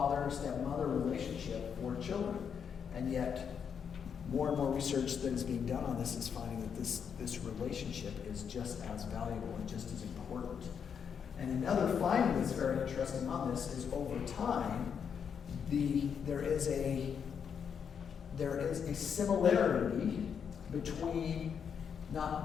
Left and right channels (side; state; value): right; quieter; 7.2 dB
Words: relationship for children. And yet, more and more research that is being done on this is finding that this relationship is just as valuable and just as important. And another finding that's very interesting on this is over time, there is a similarity between not